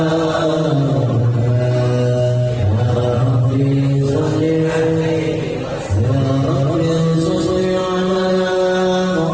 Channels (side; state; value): both; identical; correlation 1.00